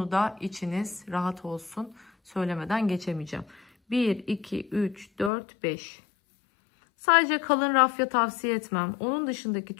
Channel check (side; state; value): right; drops out; at 5.3 s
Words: içiniz rahat olsun. Söylemeden geçemeyeceğim. 1, 2, 3, 4, 5. Sadece kalın rafya tavsiye etmem. Onun dışındaki